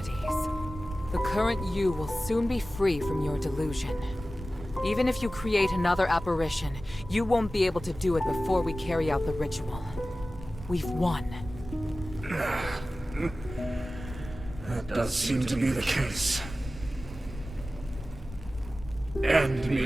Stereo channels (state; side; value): normal; both; correlation 0.96